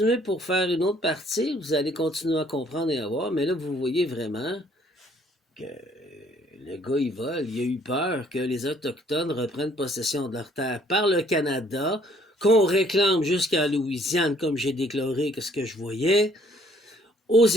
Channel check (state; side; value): normal; both; correlation 0.62